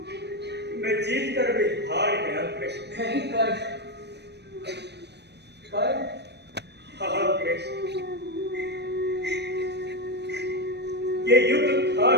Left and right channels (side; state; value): left; late; 0.50 ms